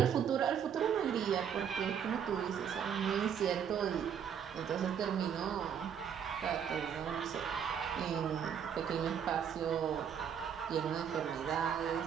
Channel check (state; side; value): quieter; left; 8.0 dB